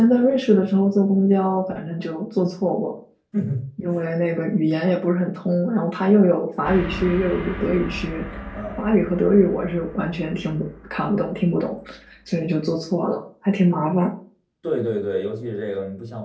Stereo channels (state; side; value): identical; both; correlation 1.00